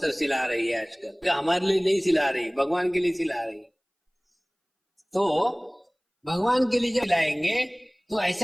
सिला रही है आजकल, तो हमारे लिए नहीं सिला रही, भगवान के लिए सिला रही। तो भगवान के लिए जब सिलाएंगे तो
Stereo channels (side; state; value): both; identical; correlation 1.00